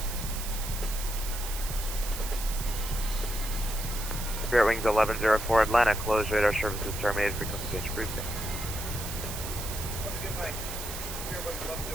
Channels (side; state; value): right; noise; hiss, 7 dB below the sound